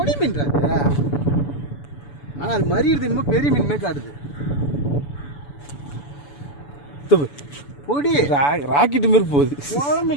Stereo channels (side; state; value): right; late; 7.0 ms